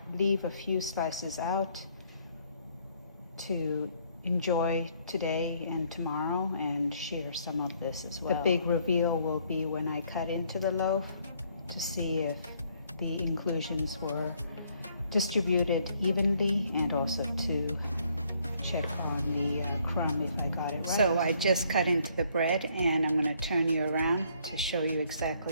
leave a few slices out to enjoy today and tomorrow and share some of this as well. The big reveal will be when I cut into the loaf to see if the inclusions were distributed evenly, and also to check on the crumb if I got it right. So I just cut into the bread, and I'm going to turn you around to show you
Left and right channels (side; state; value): both; inverted; correlation -0.66